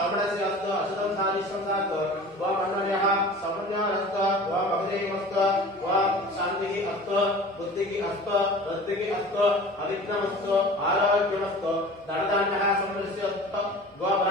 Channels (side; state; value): both; normal; correlation 0.40